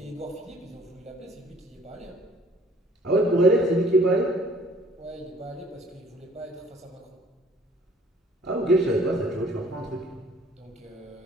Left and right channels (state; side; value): normal; both; correlation 0.56